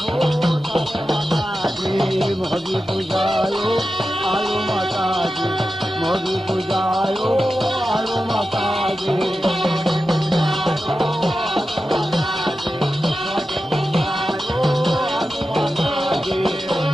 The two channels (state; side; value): normal; both; correlation 0.92